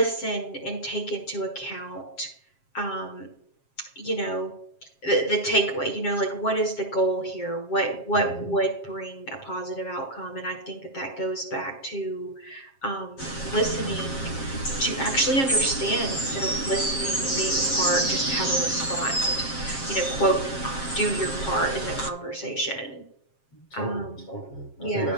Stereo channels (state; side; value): late; right; 7.5 ms